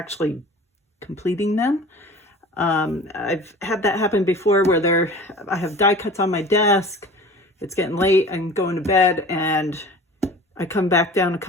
completing them. I've had that happen before where I have die cuts on my desk, it's getting late, I'm going to bed, and I come back down a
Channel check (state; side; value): normal; both; correlation 0.41